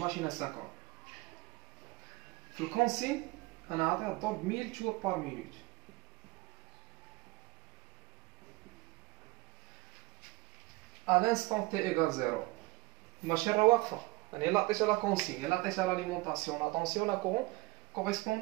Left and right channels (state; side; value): quieter; left; 22.7 dB